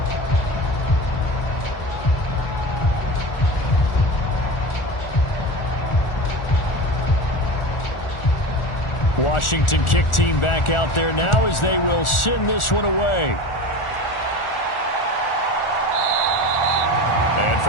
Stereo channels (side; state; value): right; late; 1.4 ms